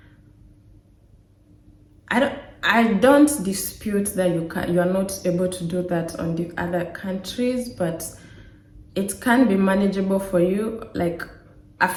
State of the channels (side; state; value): both; identical; correlation 1.00